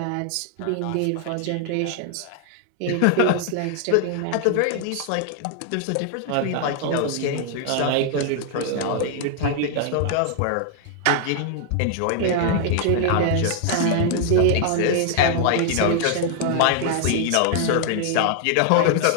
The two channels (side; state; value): both; different; correlation 0.00